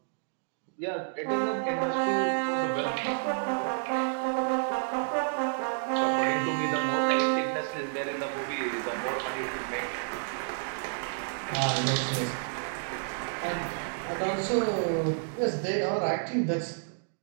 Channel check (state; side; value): silent; left; digital silence